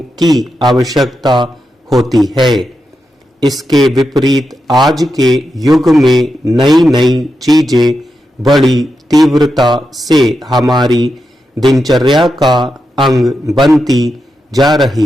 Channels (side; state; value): both; normal; correlation 0.88